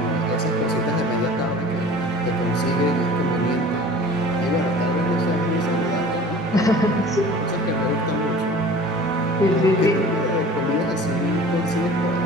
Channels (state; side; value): normal; both; correlation 0.43